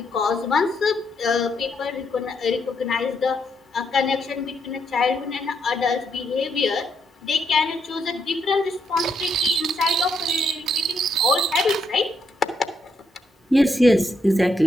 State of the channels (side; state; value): both; normal; correlation 0.77